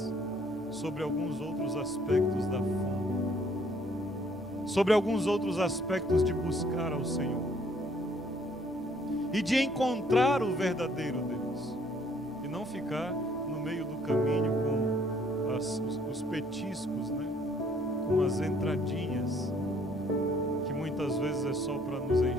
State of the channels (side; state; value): both; normal; correlation 0.63